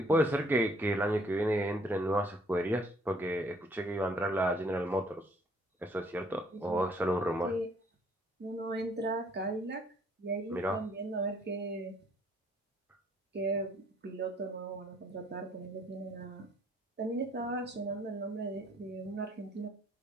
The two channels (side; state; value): both; normal; correlation 0.63